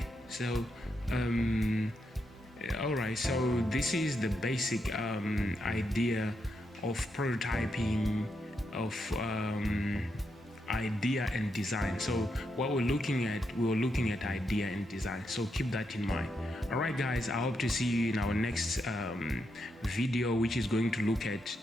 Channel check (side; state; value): both; normal; correlation 0.82